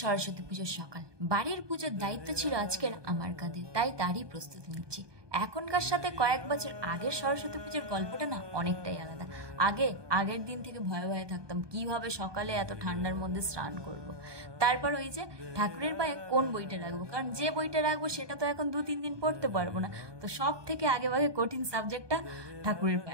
সরস্বতী পুজোর সকাল। বাড়ির পুজোর দায়িত্ব ছিল আজকের আমার কাঁধে, তাই তারই প্রস্তুতি নিচ্ছি। এখনকার সাথে কয়েক বছর আগের সরস্বতী পুজোর গল্পটা না অনেকটাই আলাদা। আগের দিন থেকে ভয়ে ভয়ে থাকতাম কিভাবে সকালে এত ঠান্ডার মধ্যে স্নান করব। তারপর ওই যে ঠাকুরের পায়ে কোন বইটা রাখবো, কারণ যে বইটা রাখবো সেটা তো এখন 2-3 দিন পড়তে পারবো না। তো সব থেকে আগে ভাগে কঠিন সাবজেক্টটা ঠাকুরের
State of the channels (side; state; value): left; late; 1.2 ms